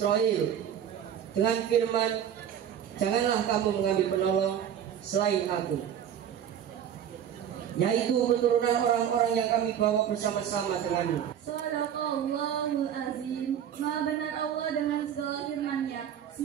dengan firman, janganlah kamu mengambil penolong selain aku, yaitu keturunan orang-orang yang kami bawa bersama-sama denganmu. Shadaqallahul azim. Maha benar Allah dengan segala firman-Nya.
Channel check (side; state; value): left; quieter; 9.4 dB